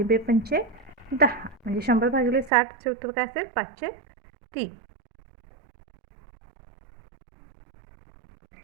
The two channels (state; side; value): drops out; left; at 2.5 s